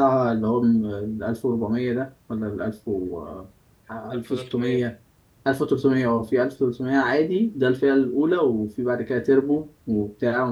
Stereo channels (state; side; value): identical; both; correlation 1.00